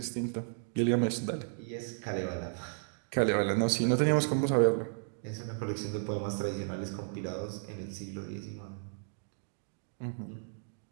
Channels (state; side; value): silent; left; digital silence